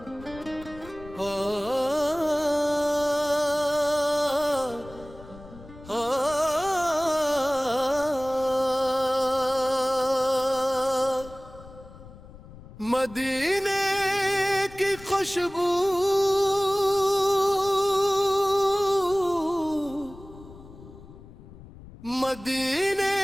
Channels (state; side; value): noise; left; rumble, 18 dB below the sound